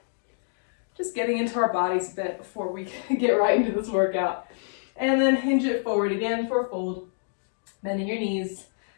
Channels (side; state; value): right; silent; digital silence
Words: Just getting into our bodies a bit before we get right into this workout. And then hinge it forward again for a fold. Bending your knees,